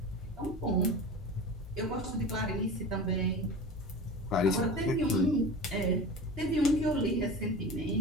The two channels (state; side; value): normal; both; correlation 0.32